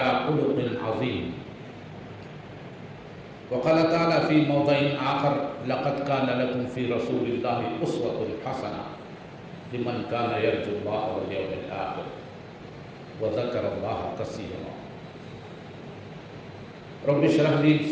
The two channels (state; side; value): identical; both; correlation 1.00